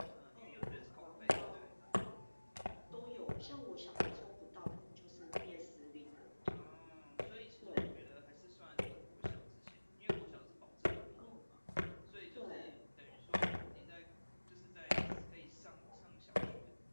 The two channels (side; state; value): both; inverted; correlation -1.00